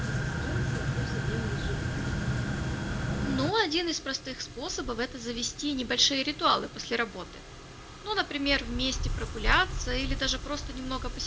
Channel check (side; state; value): both; identical; correlation 1.00